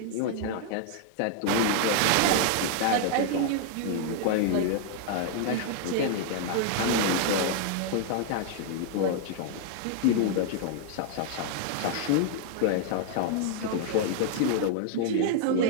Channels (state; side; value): different; both; correlation 0.00